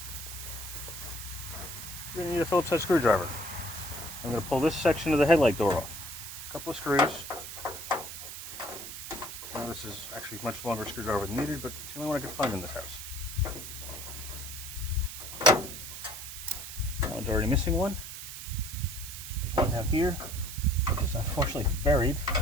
We're going to need a Phillips head screwdriver. I'm going to pull this section of the headlight door off. A couple of screws. Now this is actually a much longer screwdriver than needed, but it's the only one I could find in this house. That one's already missing one. There's one down here, which is unfortunately buried,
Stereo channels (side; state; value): right; noise; hiss, 9 dB below the sound